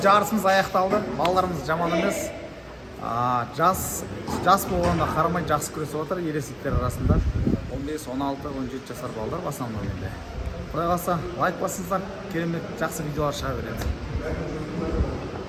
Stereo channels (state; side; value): identical; both; correlation 1.00